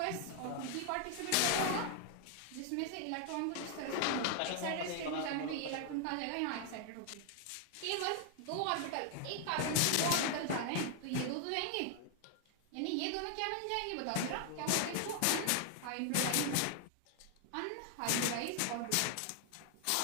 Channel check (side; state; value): both; different; correlation 0.00